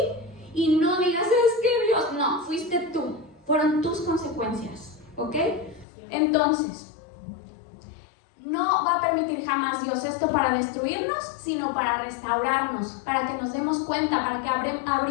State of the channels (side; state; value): right; drops out; at 5.9 s